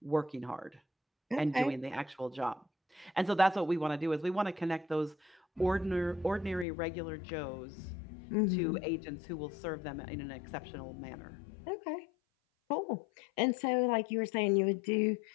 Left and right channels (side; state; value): right; drops out; at 6.7 s